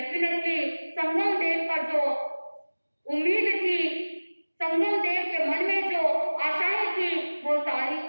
संगम देव का जो उम्मीद थी, संगम देव के मन में जो आशाएं थी, वो सारी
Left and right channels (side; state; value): both; inverted; correlation -1.00